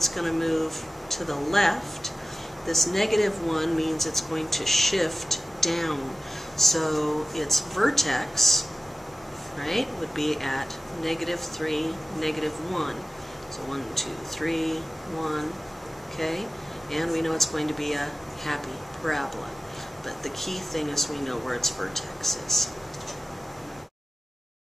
going to move to the left. This -1 means it's going to shift down. So its vertex, right, would be at -3, -1. So 1, 2, 3, 1, okay? And we know it's going to be a happy parabola. But the key thing is we know where its vertex is.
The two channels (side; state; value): both; normal; correlation 0.95